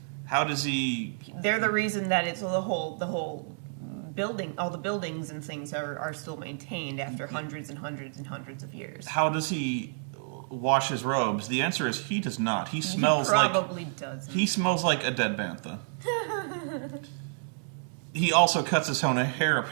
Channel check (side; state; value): left; silent; digital silence